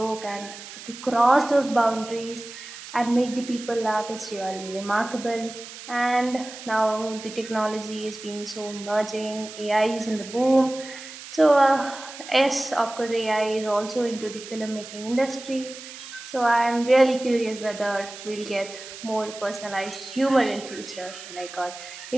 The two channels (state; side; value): noise; right; hiss, 14 dB below the sound